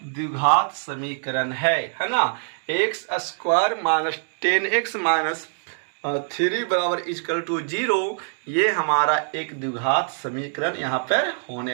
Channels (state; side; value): silent; left; digital silence